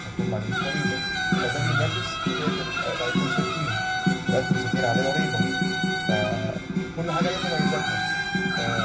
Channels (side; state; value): both; identical; correlation 1.00